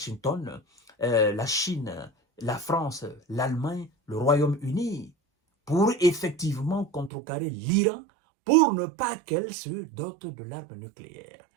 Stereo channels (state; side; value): drops out; left; at 7.1 s